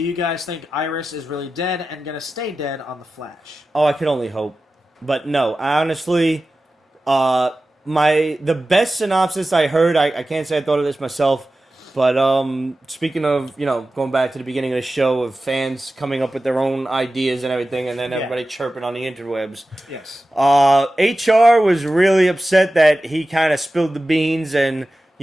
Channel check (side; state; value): both; normal; correlation 0.94